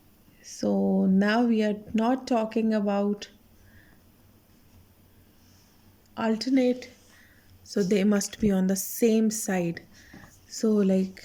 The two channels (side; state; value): both; identical; correlation 1.00